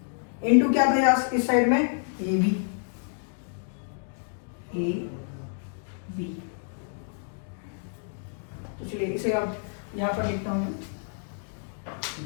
इंटू क्या था यार इस साइड में ab। तो चलिए इसे अब यहां पर लिखता हूं मैं,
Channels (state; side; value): silent; right; digital silence